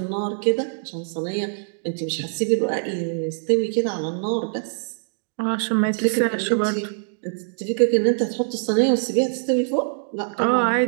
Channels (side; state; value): left; silent; digital silence